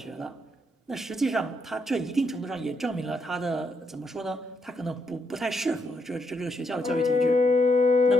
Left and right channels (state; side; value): normal; both; correlation 0.77